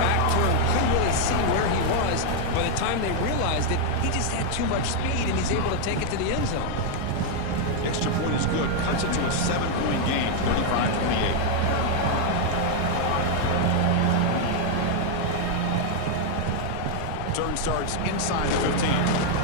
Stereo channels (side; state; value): both; different; correlation 0.00